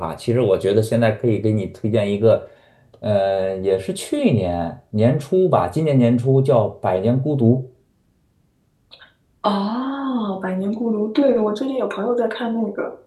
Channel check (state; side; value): identical; both; correlation 1.00